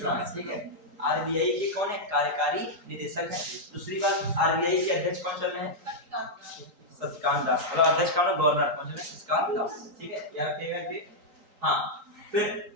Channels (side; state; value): left; late; 3.8 ms